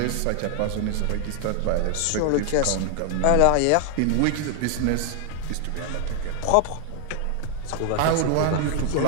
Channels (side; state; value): both; different; correlation 0.00